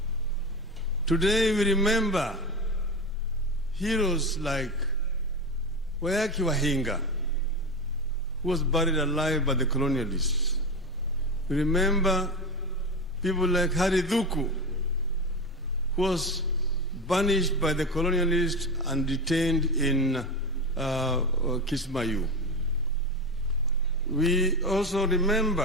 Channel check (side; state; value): both; normal; correlation 0.21